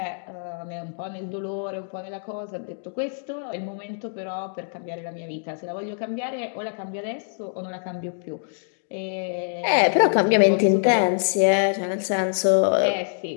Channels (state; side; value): silent; right; digital silence